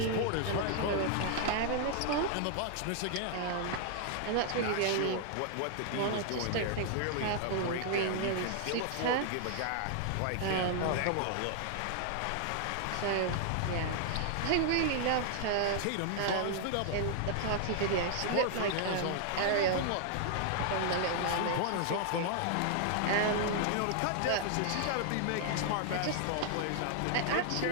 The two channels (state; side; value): different; both; correlation 0.00